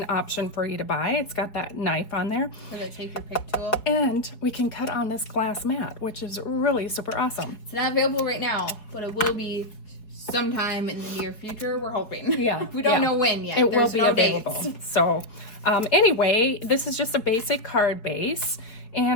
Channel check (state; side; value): late; right; 4.6 ms